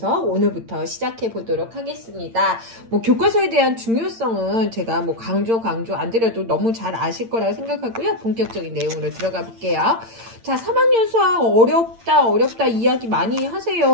오늘부터 시작해 보도록 하겠습니다. 뭐 교과서에 대한 중요성은 제가 뭐 강조 안 드려도 너무 잘 아실 거라고 생각하고요. 본격적인 내용으로 들어가 볼게요. 자, 3학년 수학 어렵다 이야기 많이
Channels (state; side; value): late; left; 8.8 ms